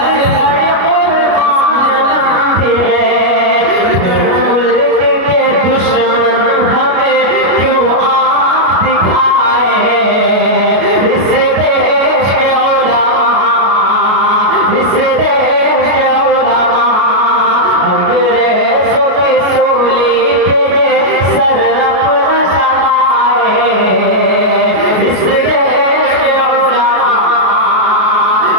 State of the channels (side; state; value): left; late; 33 ms